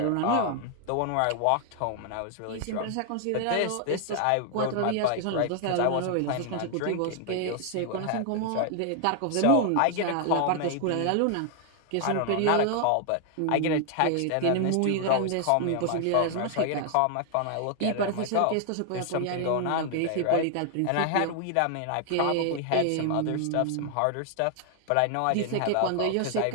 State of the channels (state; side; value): different; both; correlation 0.00